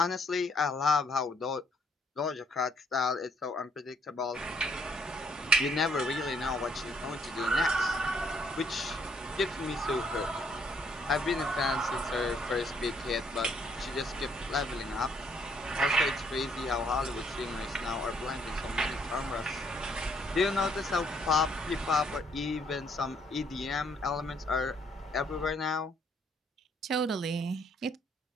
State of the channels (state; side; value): normal; both; correlation 0.68